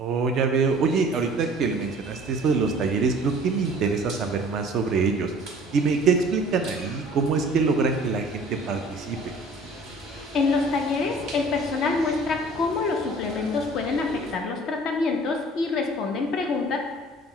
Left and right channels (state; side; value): normal; both; correlation 0.49